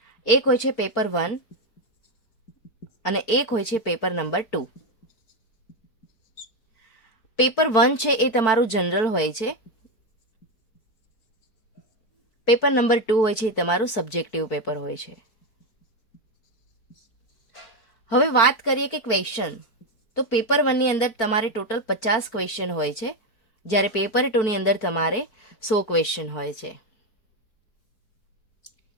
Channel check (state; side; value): late; right; 4.5 ms